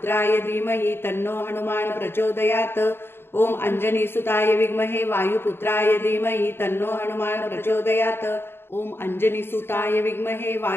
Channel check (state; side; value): late; right; 0.11 ms